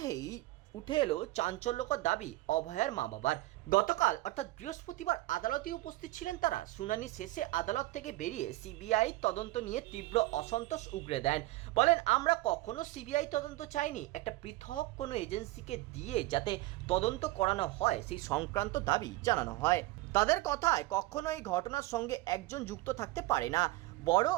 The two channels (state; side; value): quieter; left; 19.1 dB